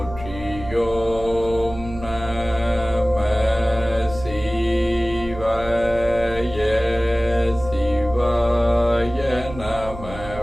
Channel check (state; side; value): noise; right; hum, 13 dB below the sound